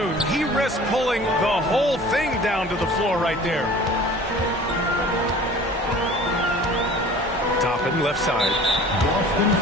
he risked pulling the whole thing down to the floor right there. Toppin, left side. Boston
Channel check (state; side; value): normal; both; correlation 0.45